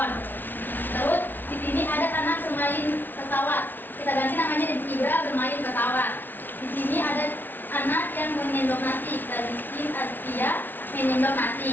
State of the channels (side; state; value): right; late; 0.092 ms